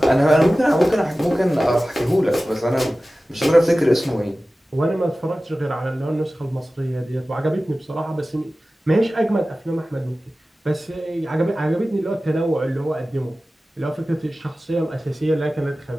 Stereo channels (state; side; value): normal; both; correlation 0.96